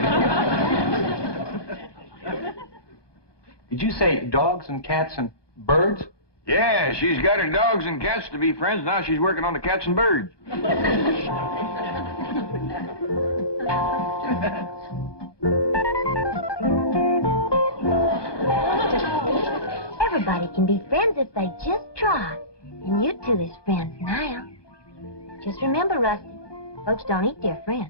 you. Did you say dogs and cats and birds? Yeah, she's got her dogs and cats to be friends. Now she's working on the cats and birds. Everybody can be friends if they just try. And you two is friends now. Just remember, Rusty, folks don't eat their friends.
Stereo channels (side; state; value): right; late; 1.2 ms